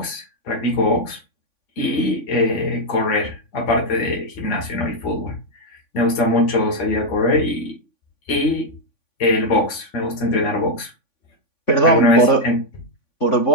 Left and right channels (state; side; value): late; right; 3.5 ms